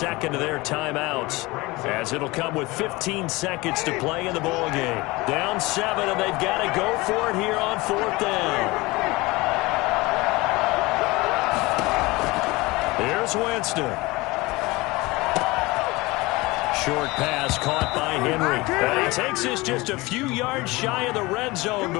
of their timeouts, as it'll come with 15 seconds to play in the ball game. Down 7, and they've got to go for it here on 4th down. Here's Winston. Short pass caught by Henry. And he takes this just a few yards shy of the red zone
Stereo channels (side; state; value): right; quieter; 22.3 dB